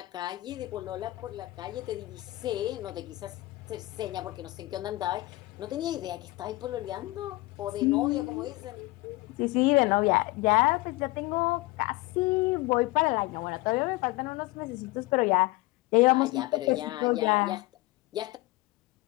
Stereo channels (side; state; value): right; quieter; 20.4 dB